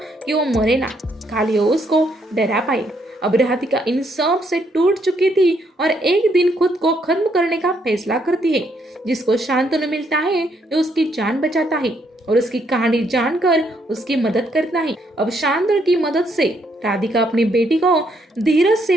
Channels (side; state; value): both; normal; correlation 0.73